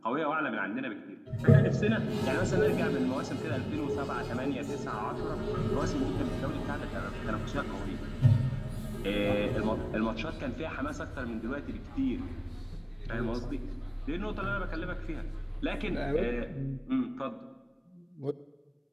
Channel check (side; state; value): both; identical; correlation 1.00